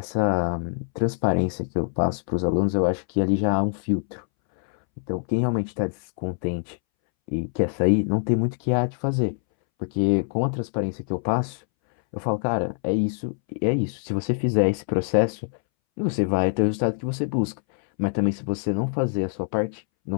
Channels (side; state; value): right; silent; 62 dB below the other